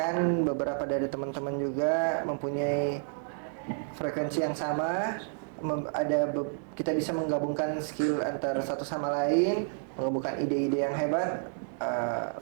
beberapa dari teman-teman juga mempunyai frekuensi yang sama. Kita bisa menggabungkan skill antar satu sama lain, menggabungkan ide-ide yang hebat,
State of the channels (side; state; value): left; silent; digital silence